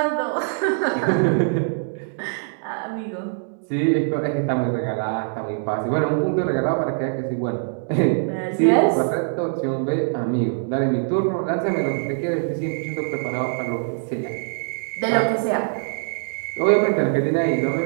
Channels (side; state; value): left; silent; digital silence